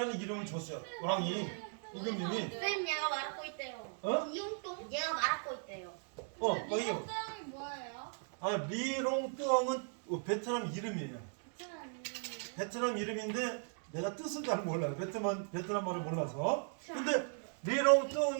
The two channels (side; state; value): left; silent; 53 dB below the other